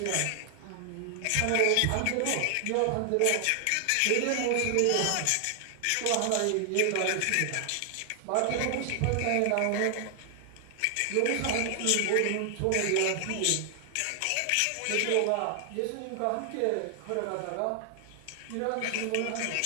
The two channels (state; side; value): different; both; correlation 0.00